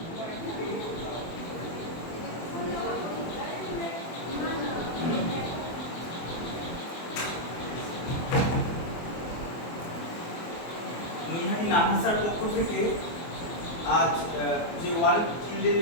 নৈহাটি নানাসার পক্ষ থেকে আজ যে ওয়ার্ল্ড চিলড্রেন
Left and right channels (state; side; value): late; right; 24 ms